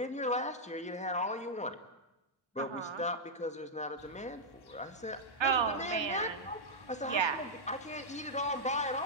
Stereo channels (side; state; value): both; normal; correlation -0.06